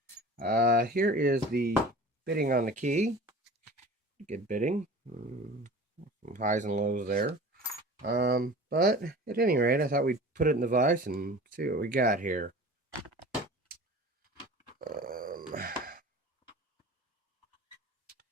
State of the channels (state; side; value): normal; both; correlation 0.40